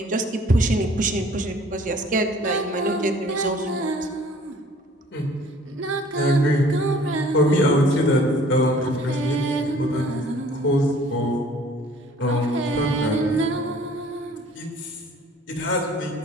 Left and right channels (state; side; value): normal; both; correlation 0.53